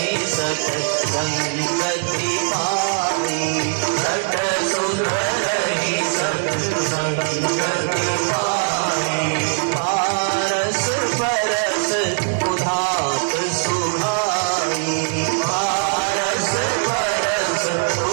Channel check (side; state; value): left; silent; 61 dB below the other